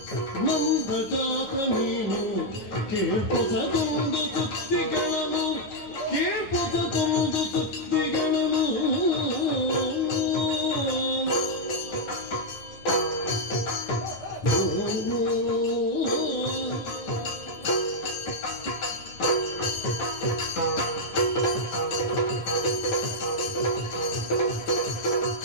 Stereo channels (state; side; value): late; right; 9.1 ms